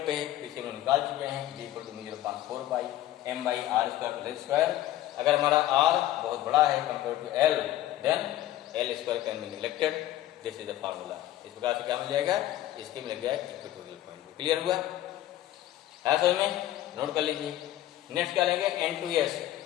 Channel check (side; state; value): right; quieter; 13.8 dB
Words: पे है पीछे हम निकाल चुके हैं, B equal to 0.4 pi M by R square. अगर हमारा आर बहुत बड़ा है compare to L, then L square can be neglected, this is the formula. इस प्रकार से क्या मिल जाएगा, इसके मिल जाएगा इक्वेटोरियल पॉइंट। क्लियर हुआ है समझ में, नोट कर लीजिए। नेक्स्ट क्या लेंगे, एन टू एस